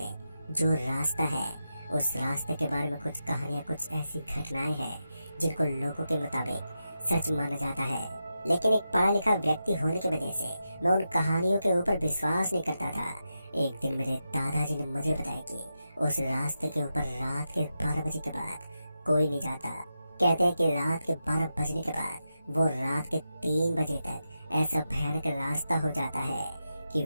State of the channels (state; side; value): inverted; both; correlation -0.89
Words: जो रास्ता है, उस रास्ते के बारे में कुछ कहानियां, कुछ ऐसी घटनाएं हैं जिनको लोगों के मुताबिक सच माना जाता है। लेकिन एक पढ़ा लिखा व्यक्ति होने की वजह से मैं उन कहानियों के ऊपर विश्वास नहीं करता था। एक दिन मेरे दादाजी ने मुझे बताया कि उस रास्ते के ऊपर रात के 12 बजे के बाद कोई नहीं जाता। कहते हैं कि रात के 12 बजने के बाद वो रात के 3 बजे तक ऐसा भयानक रास्ता हो जाता है कि